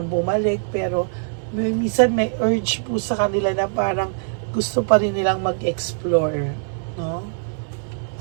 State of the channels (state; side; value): silent; left; 64 dB below the other